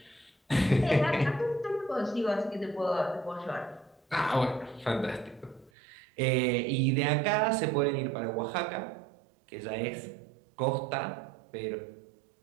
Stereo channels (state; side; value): drops out; left; at 5.7 s